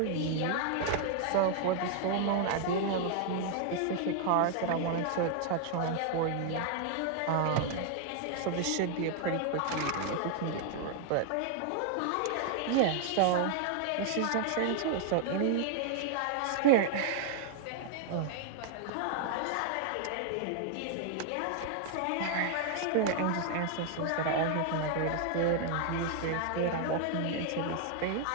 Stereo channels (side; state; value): both; different; correlation 0.00